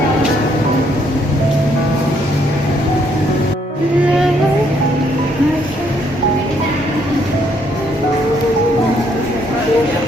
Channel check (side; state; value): both; normal; correlation 0.70